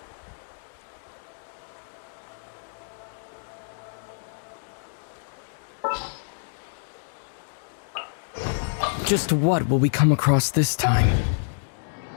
Just what will we come across this time?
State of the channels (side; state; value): right; silent; digital silence